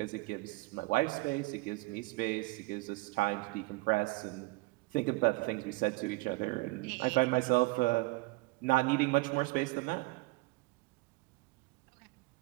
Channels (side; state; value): left; quieter; 23.6 dB